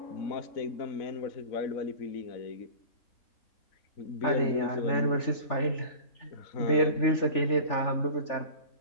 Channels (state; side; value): late; right; 3.4 ms